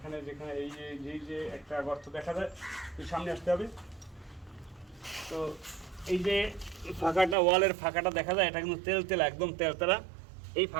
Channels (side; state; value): left; drops out; at 7.4 s